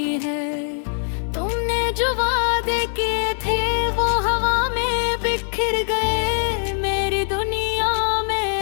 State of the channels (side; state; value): right; silent; 64 dB below the other